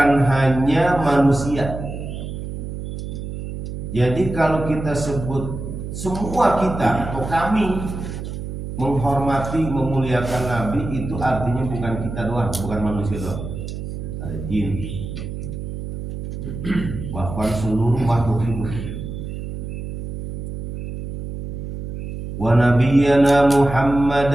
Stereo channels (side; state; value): right; noise; hum, 7 dB below the sound